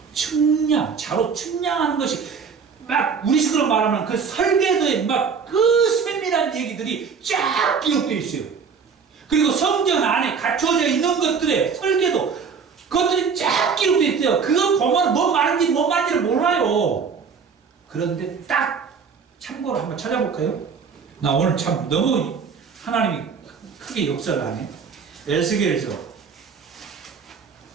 측량, 자로 측량하는 것이 막 우리식으로 말하면 그 설계도에 막 그 세밀한 얘기들이 쫙 기록되어 있어요. 그리고 성전 안에 갖춰져 있는 것들의 설계도, 그것들이 쫙 기록되어 있어요. 그거 보면 뭐 말인지 뭐 말인지를 몰라요. 그런데 딱 참고로 한번 찾아볼까요? 나 오늘 참 너무 하나님이 크게 역사를 하네. 에스겔에서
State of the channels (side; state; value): left; quieter; 5.9 dB